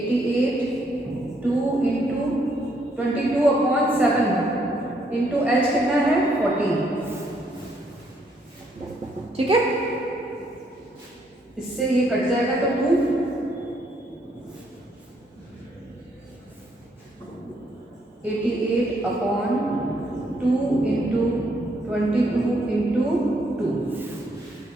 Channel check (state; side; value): normal; both; correlation 0.71